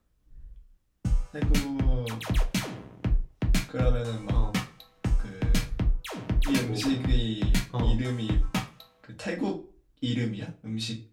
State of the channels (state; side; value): identical; both; correlation 1.00